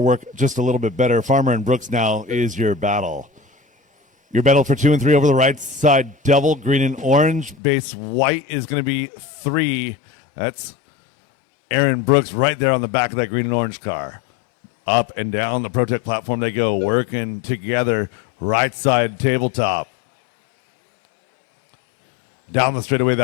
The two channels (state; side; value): drops out; right; at 7.6 s